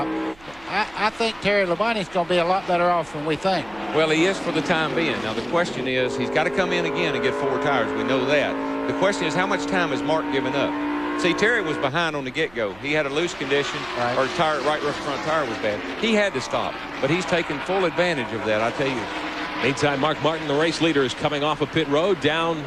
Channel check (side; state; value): right; noise; hum, 25 dB below the sound